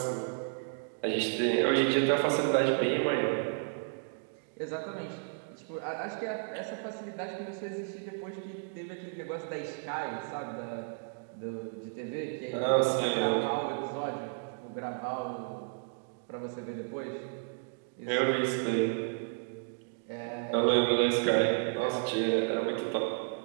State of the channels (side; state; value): left; silent; digital silence